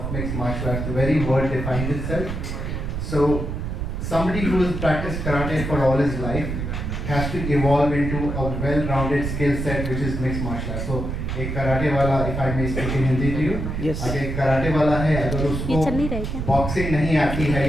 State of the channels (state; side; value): noise; right; rumble, 4 dB below the sound